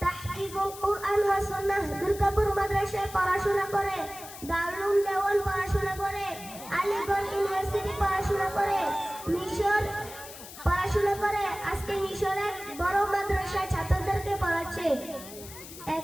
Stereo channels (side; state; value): left; noise; hiss, 14 dB below the sound